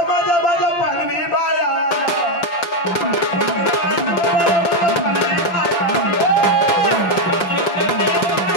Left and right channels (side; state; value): right; late; 5.9 ms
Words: माझा माझा पालवी बाया